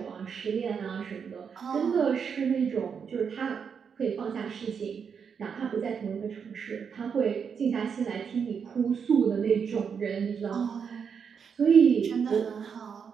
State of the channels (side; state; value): left; quieter; 6.7 dB